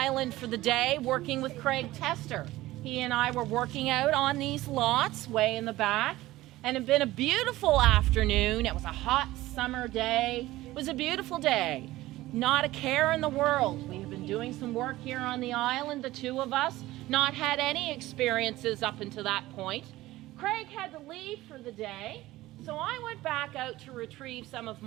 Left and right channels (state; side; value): quieter; left; 17.1 dB